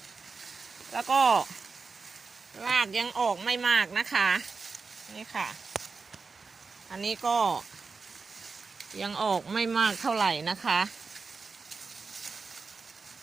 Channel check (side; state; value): left; quieter; 4.6 dB